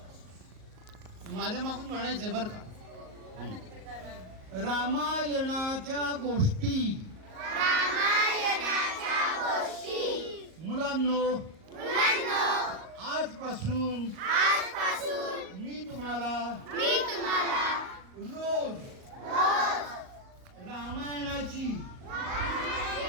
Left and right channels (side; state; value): left; late; 38 ms